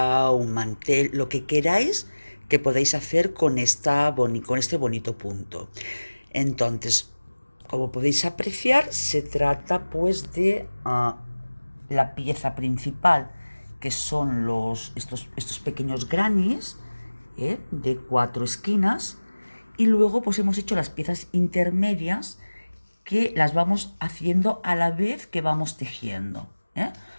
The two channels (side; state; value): both; inverted; correlation -1.00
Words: un mantel, lo que queráis que podáis hacer con, con este bonito punto. Entonces, como podéis apreciar, se trata pues de la pieza principal, que son estos pequeños grannies de 4 esquinas, y luego pues hemos hecho las piezas intermedias que las vamos haciendo a la vez que vamos tejiendo.